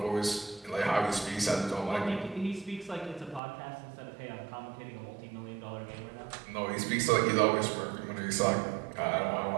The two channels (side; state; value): left; drops out; at 3.4 s